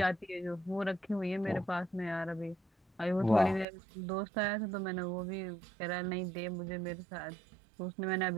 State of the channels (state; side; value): drops out; left; at 3.7 s